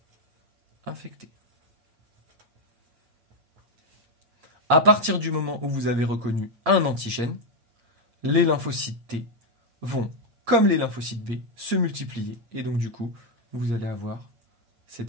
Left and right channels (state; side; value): late; left; 8.6 ms